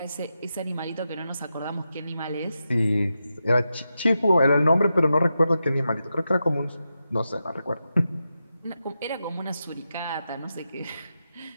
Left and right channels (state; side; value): inverted; both; correlation -0.88